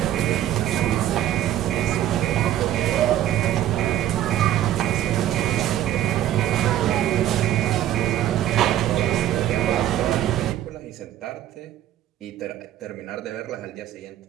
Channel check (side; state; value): left; quieter; 12.3 dB